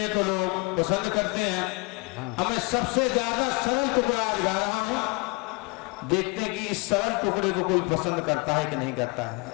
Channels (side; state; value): right; quieter; 29.4 dB